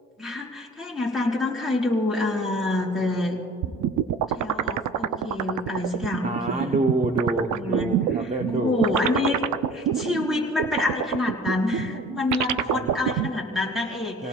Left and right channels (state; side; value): normal; both; correlation 0.46